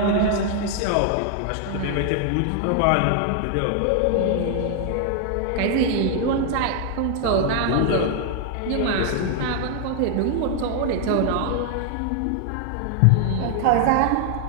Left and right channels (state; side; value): different; both; correlation 0.00